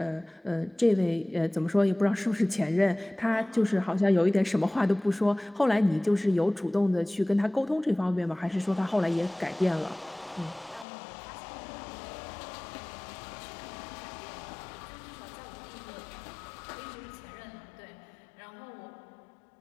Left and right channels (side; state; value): right; drops out; at 10.9 s